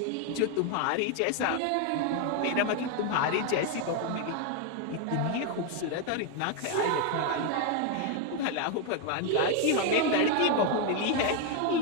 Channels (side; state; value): both; different; correlation 0.01